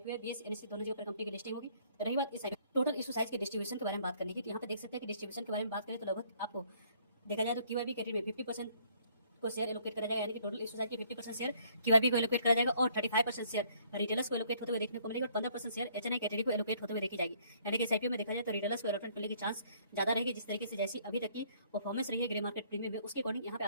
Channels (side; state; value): both; inverted; correlation -0.62